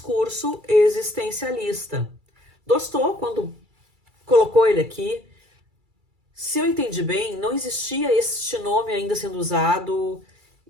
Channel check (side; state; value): left; late; 2.3 ms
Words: existencialista. Dostô, quando colocou ele aqui, se eu entendi bem, não existia este nome ainda sendo usado